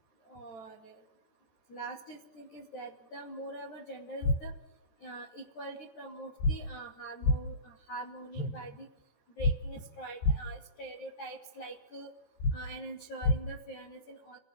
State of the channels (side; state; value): right; late; 13 ms